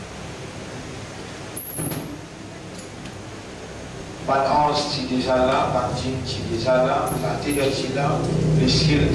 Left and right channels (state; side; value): identical; both; correlation 1.00